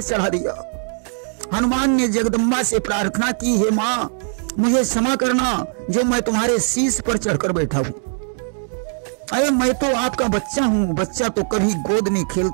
चढ़ा दिया। हनुमान ने जगदम्बा से प्रार्थना की, हे मां मुझे क्षमा करना जो मैं तुम्हारे शीश पर चढ़कर बैठा हूं। अरे मैं तो आपका बच्चा हूं। बच्चा तो कभी गोद में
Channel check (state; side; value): silent; left; 60 dB below the other